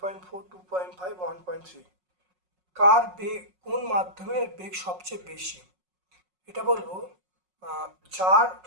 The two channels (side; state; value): left; late; 5.5 ms